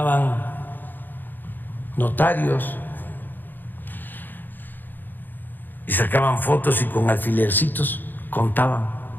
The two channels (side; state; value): right; late; 0.090 ms